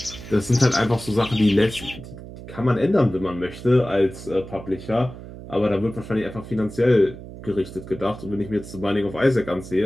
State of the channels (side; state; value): right; noise; hum, 14 dB below the sound